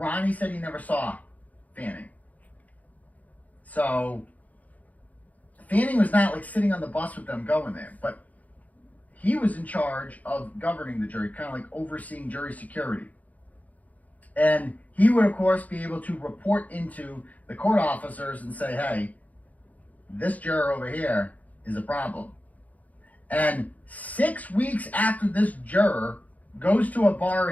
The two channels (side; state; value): right; late; 0.075 ms